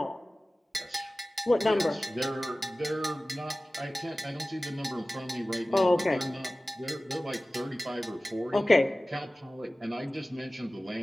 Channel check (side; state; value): both; normal; correlation 0.97